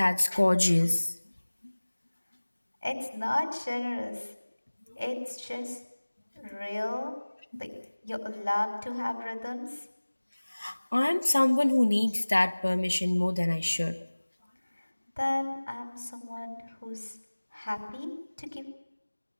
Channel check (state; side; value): inverted; both; correlation -1.00